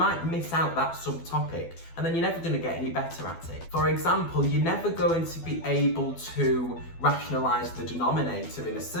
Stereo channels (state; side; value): late; right; 12 ms